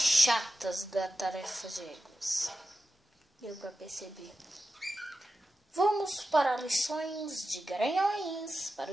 da tarefa de egos. Deu pra perceber. Vamos para lições de garanhões para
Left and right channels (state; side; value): normal; both; correlation 0.92